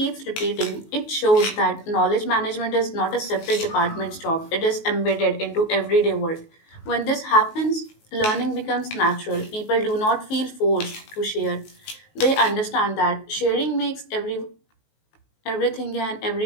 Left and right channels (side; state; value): right; late; 19 ms